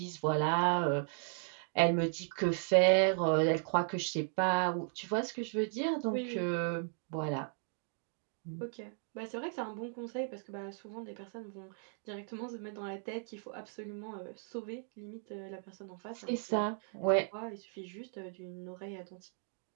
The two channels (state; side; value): silent; left; 54 dB below the other